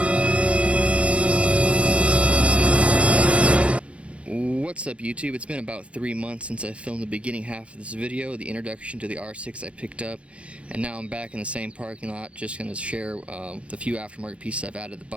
What's up, YouTube? It's been about 3 months since I filmed the beginning half of this video, the introduction to the R6 I picked up, and now I'm back in the same parking lot, just going to share the few aftermarket pieces I've added to the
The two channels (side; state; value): left; late; 0.061 ms